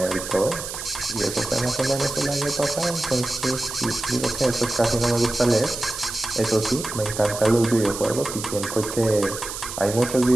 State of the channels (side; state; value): right; noise; hiss, 8 dB below the sound